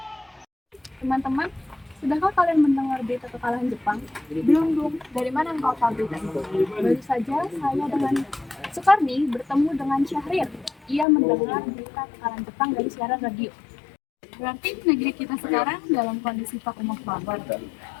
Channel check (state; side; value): drops out; right; at 11.1 s